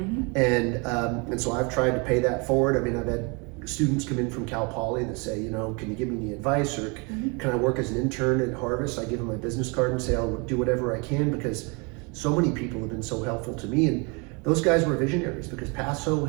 And so I've tried to pay that forward. I mean, I've had students come in from Cal Poly that say, you know, can you give me any advice, or can I work as an intern at Harvest? I give them my business card and say I'll do whatever I can, because so many people have been so helpful to me. And those guys were visionaries, because Paso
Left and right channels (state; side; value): quieter; left; 31.2 dB